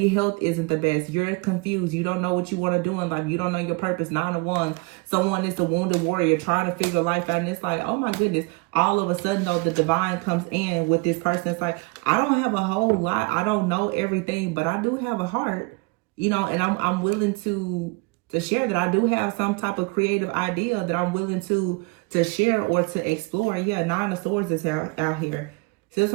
health isn't the best. You're confused. You don't know what you want to do in life. You don't know your purpose. 9 of Wands. Someone is a wounded warrior trying to figure life out. And it's like, oh my goodness. All of a sudden, though, the divine comes in with this person. It's like, I don't have a whole lot. I don't know everything, but I do have a heart, you know, and I'm willing to share that. I do have some type of creative idea that I'm willing to share or to explore. Yeah, 9 of Swords is out here. See what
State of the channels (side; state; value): left; quieter; 26.3 dB